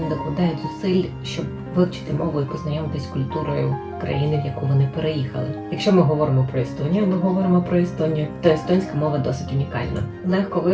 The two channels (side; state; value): both; identical; correlation 1.00